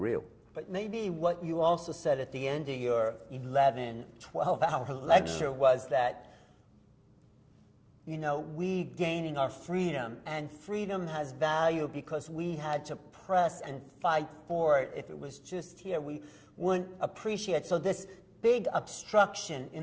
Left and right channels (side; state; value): both; identical; correlation 1.00